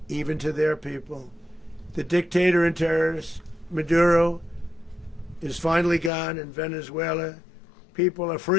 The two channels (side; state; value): right; drops out; at 6.1 s